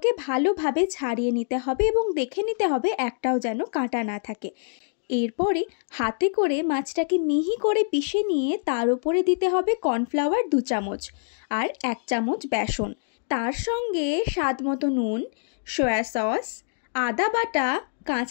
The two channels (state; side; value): silent; right; digital silence